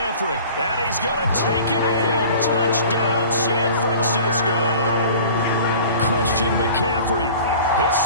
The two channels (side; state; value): both; inverted; correlation -0.43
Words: And he's going to take it in. Touchdown, San Francisco. Christian McCaffrey, his